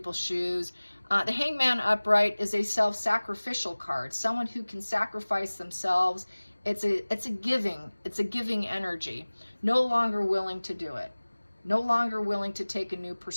shoes. The Hangman upright is a self-sacrificial card, someone who can sacrifice themselves. It's a giving energy. No longer willing to do it. No longer willing to take a new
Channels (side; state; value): both; inverted; correlation -1.00